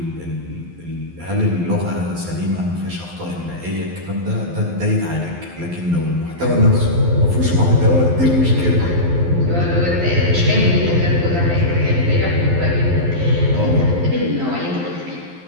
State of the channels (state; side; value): late; left; 12 ms